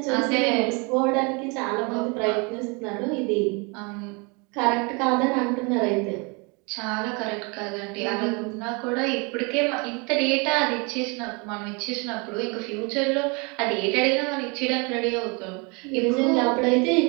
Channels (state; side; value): quieter; left; 31.0 dB